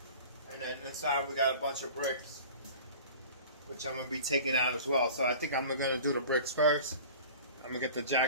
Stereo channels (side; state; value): both; inverted; correlation -0.41